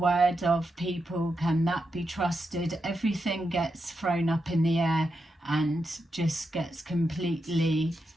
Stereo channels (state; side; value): normal; both; correlation 0.86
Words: of people, can that be trusted? Everything gets thrown up in the air and just gets completely